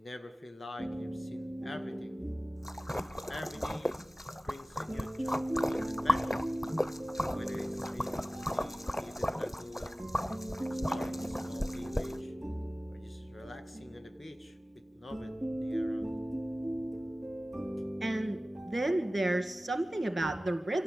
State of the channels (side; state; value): both; normal; correlation 0.97